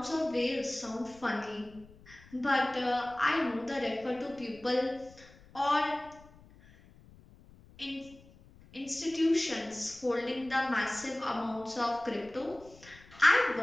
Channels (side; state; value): left; noise; rumble, 24 dB below the sound